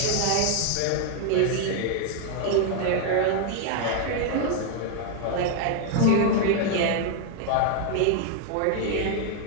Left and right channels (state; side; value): different; both; correlation 0.00